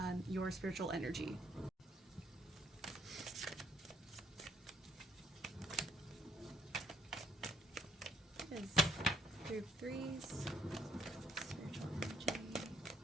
your spiritual energy. Is group threes, spiritual energy.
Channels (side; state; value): both; normal; correlation 0.69